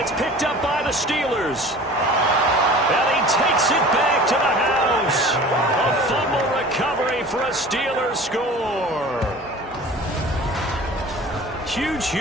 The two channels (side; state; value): both; normal; correlation 0.42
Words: picked up by the Steelers. And he takes it back to the house. A fumble recovery for a Steelers score. Huge,